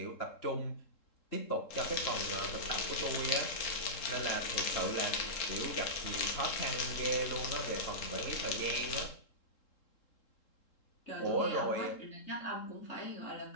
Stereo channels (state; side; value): late; right; 3.7 ms